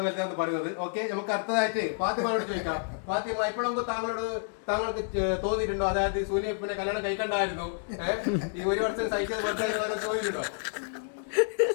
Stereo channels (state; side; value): silent; right; 58 dB below the other